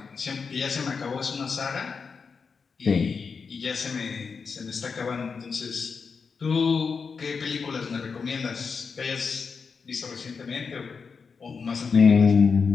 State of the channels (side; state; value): right; quieter; 5.4 dB